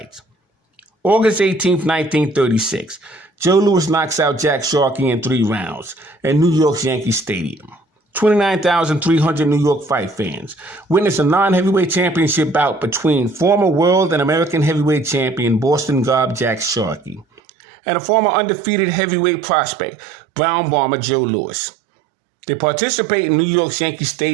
August 18th, 1936, Joe Louis knocks out Jack Sharkey in 3 rounds at New York's Yankee Stadium. 29,300 New York fight fans witnessed a non-heavyweight championship bout between former world and American heavyweight champion Boston Gob Jack Sharkey and a former undefeated heavyweight prospect, Brown Bomber Joe Louis. They participate in New York's Yankee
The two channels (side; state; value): left; drops out; at 17.2 s